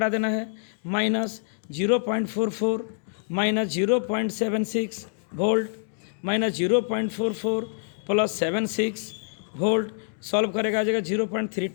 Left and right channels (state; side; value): silent; right; digital silence